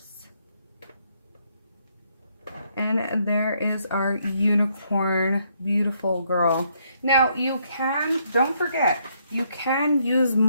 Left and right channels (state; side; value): inverted; both; correlation -0.72